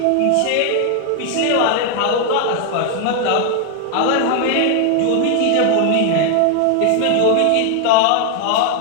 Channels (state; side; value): different; both; correlation 0.00